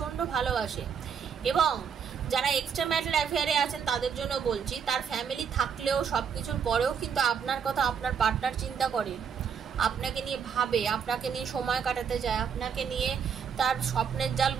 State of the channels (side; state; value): left; quieter; 7.0 dB